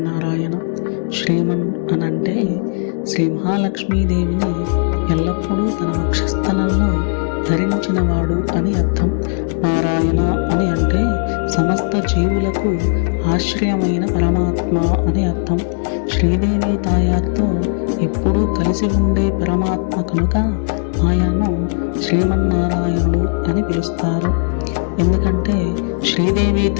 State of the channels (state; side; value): silent; right; digital silence